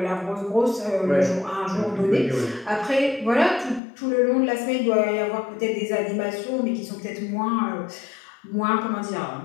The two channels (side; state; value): right; drops out; at 3.8 s